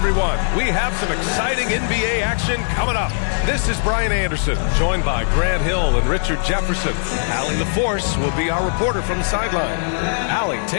We have some exciting NBA action coming up. This is Brian Anderson, joined by Grant Hill and Richard Jefferson. Allie LaForce will be our reporter from the sideline. Allie,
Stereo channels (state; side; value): silent; right; digital silence